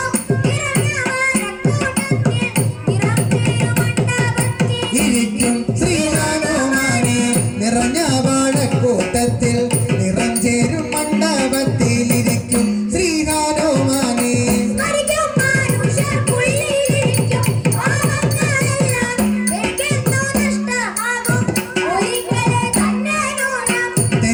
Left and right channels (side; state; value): both; identical; correlation 1.00